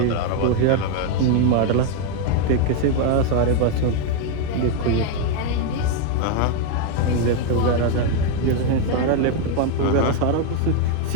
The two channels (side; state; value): both; different; correlation 0.01